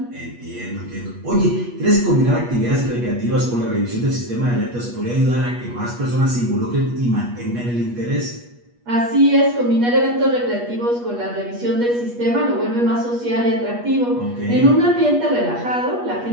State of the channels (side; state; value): left; late; 8.3 ms